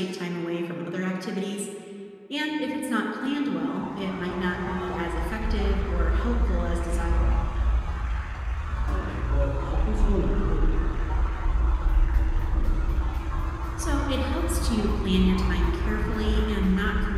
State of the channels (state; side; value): identical; both; correlation 1.00